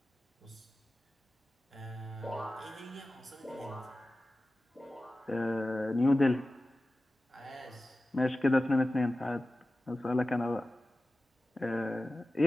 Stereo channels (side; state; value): both; normal; correlation 0.95